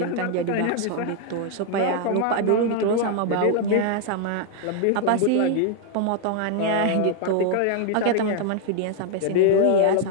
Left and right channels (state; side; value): different; both; correlation 0.00